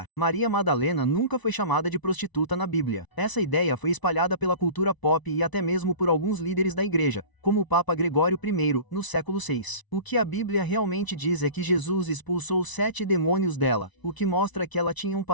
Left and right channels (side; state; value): right; late; 1.0 ms